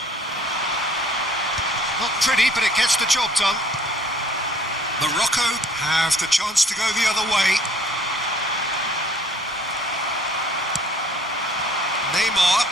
Not pretty, but it gets the job done. Morocco have the chance to go the other way. Neymar.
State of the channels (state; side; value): normal; both; correlation 0.56